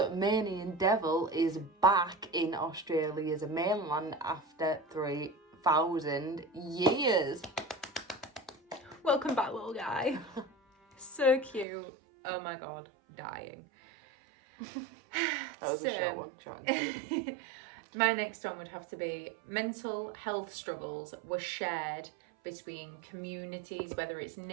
devil is back in Australia's mainland after 3,000 years. Welcome back, little guy. So cute. Oh my god, dying. That was a short one. Short and sweet. My next one would have to be mental health struggles were shared between communities, whether it's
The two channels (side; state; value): left; drops out; at 11.7 s